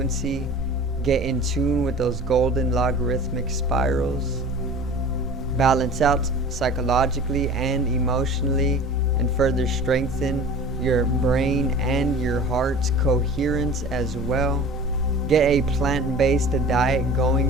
Get in tune with those golden logarithmic spirals. Balance out psychologically and emotionally, and further strengthen your brain and your heart's coherence as well. Get a plant-based diet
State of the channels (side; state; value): both; normal; correlation 0.41